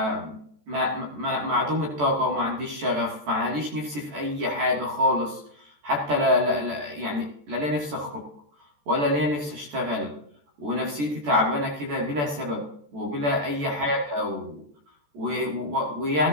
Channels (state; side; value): late; left; 14 ms